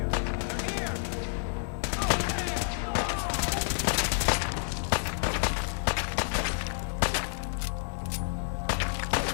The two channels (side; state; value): right; silent; digital silence